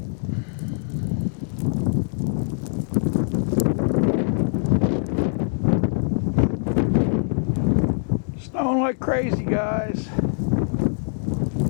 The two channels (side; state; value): right; silent; digital silence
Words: Snowing like crazy, guys.